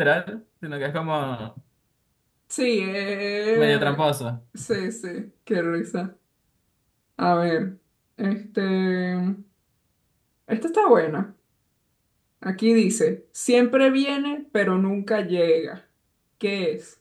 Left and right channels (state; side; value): identical; both; correlation 1.00